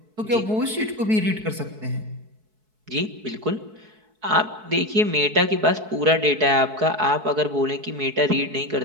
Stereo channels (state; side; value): late; left; 4.6 ms